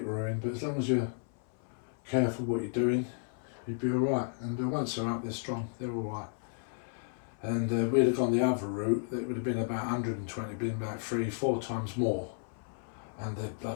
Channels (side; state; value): right; silent; 56 dB below the other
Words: ruined. But as long as you're careful what you're doing, you'd be alright. And once they're up, they're strong. They're alright. And we'd have gone the other route. It would have been about 120, been about 3-4 times more. And they're